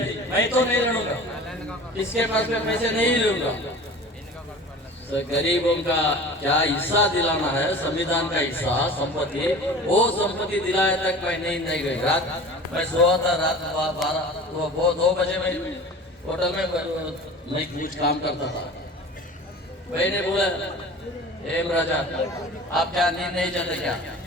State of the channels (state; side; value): normal; both; correlation 0.39